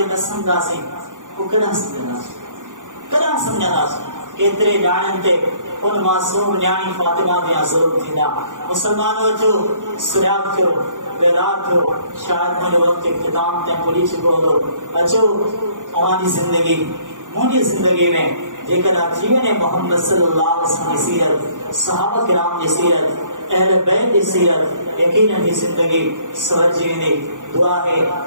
نہ سمجھا سے وہ کنا سمجھا سے کہ تیرے جانن تے ان معصوم نیانی فاطمہ دیا ظلم تھینا۔ مسلمانوں جو سریاب تھو بیدار تھو، شاید مجھے وقت اختتام تے پوری چکو دو اچھو ہماری زندگی مجھے زندگی میں جے کر جیون محمد صلی اللہ علیہ وسلم کی سیرت، صحابہ کرام کی سیرت، اہل بیت کی سیرت یقیناً ہی زندگی سور جیونے۔ دعا ہے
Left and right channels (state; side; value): late; left; 0.87 ms